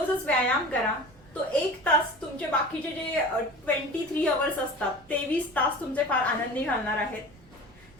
व्यायाम करा. तो 1 तास तुमचे बाकीचे जे 23 अवर्स असतात 23 तास तुमचे फार आनंदी घालणार आहेत.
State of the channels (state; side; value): noise; right; rumble, 25 dB below the sound